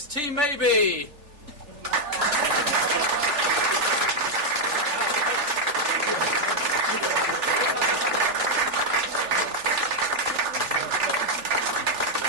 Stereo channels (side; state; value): left; late; 3.4 ms